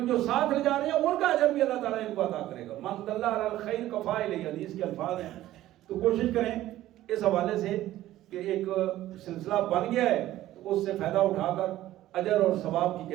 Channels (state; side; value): quieter; left; 14.4 dB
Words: جو ساتھ لے جا رہے ہیں ان کا اجر بھی اللہ تعالیٰ ان کو عطا کرے گا۔ من دل علی الخیر کفاعلہ، حدیث کے الفاظ ہیں۔ تو کوشش کریں اس حوالے سے کہ ایک سلسلہ بن گیا ہے تو اس سے فائدہ اٹھا کر اجر اور ثواب کی